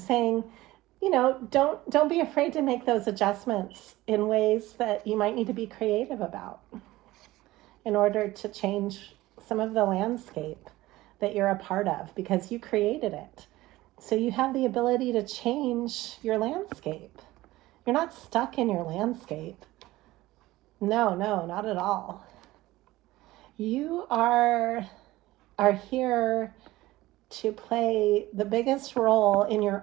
don't be afraid to make those adjustments in ways that you might need to be creative about in order to change some of the landscape that you're a part of because you created it. So you have the ability to change your landscape. You're not stuck in your landscape. No, not at all. You are here to play the biggest role in your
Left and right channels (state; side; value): quieter; left; 17.8 dB